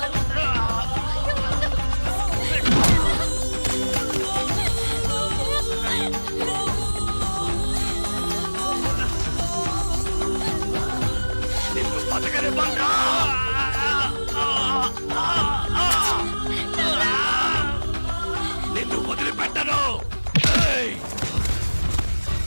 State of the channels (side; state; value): both; inverted; correlation -1.00